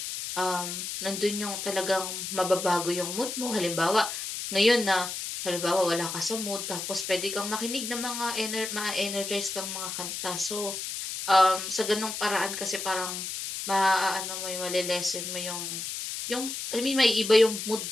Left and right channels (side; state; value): left; noise; hiss, 5 dB below the sound